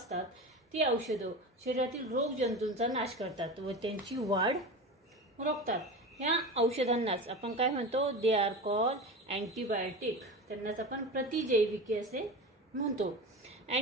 ती औषधं शरीरातील रोग जंतूंचा नाश करतात व त्यांची वाढ रोखतात. ह्या औषधांनाच आपण काय म्हणतो? They are call antibiotic. त्यांनाच आपण प्रतिजैविके असे म्हणतो.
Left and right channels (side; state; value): both; normal; correlation 0.28